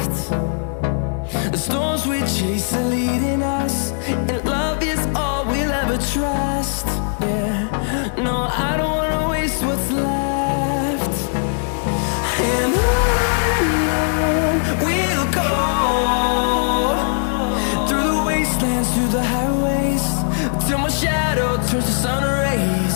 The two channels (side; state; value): right; silent; digital silence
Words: The storms we chase are leading us, and love is all we'll ever trust. Yeah, no, I don't wanna waste what's left. And on we'll go, through the wastelands, through the highways, till my shadow turns to sun rays.